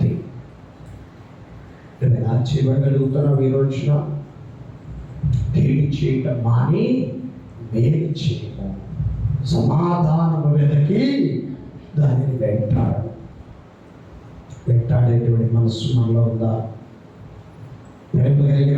నువ్వు ఎలా చేయబడగలుగుతున్నావు? ఈ రోజున కీడు చేయటం మాని మేలు చేయము, సమాధానము వెదకి దానిని వెంటాడేటువంటి మనస్సు మనలో ఉందా? ప్రేమ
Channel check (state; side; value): identical; both; correlation 1.00